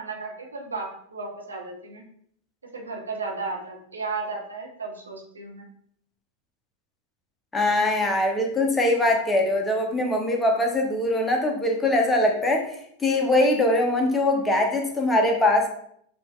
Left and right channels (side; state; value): both; normal; correlation 0.39